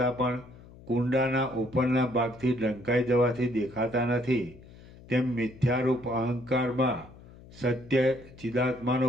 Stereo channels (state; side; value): noise; left; hum, 21 dB below the sound